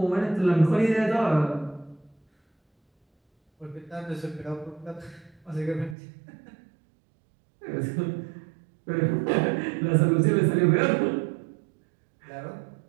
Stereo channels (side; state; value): left; drops out; at 6.0 s